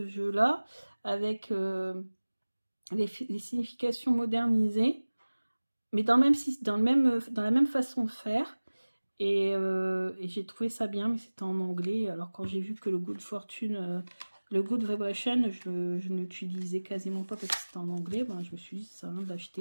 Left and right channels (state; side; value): inverted; both; correlation -1.00